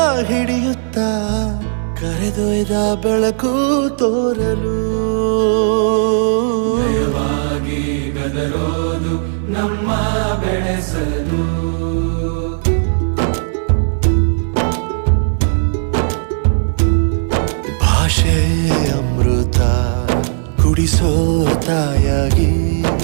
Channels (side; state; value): left; silent; 58 dB below the other